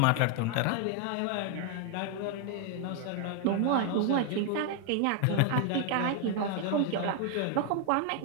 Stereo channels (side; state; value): both; different; correlation 0.00